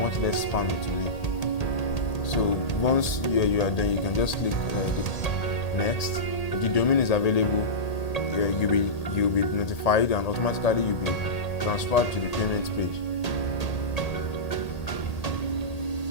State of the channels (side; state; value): right; late; 1.8 ms